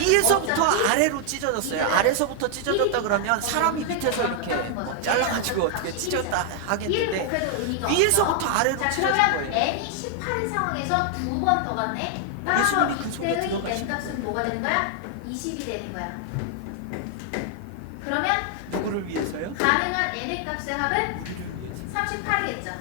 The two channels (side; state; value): both; different; correlation 0.00